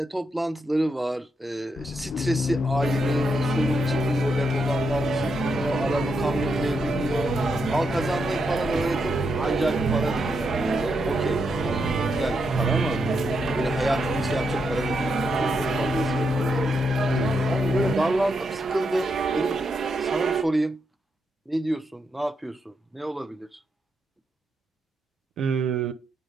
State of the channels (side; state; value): both; normal; correlation 0.82